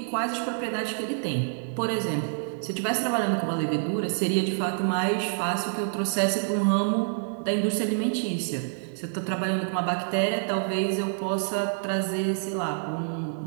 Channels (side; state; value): left; silent; 60 dB below the other